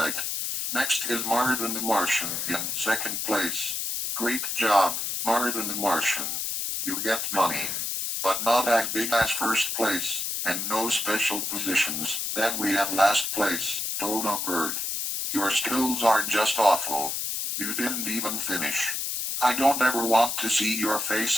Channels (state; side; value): noise; left; hiss, 2 dB below the sound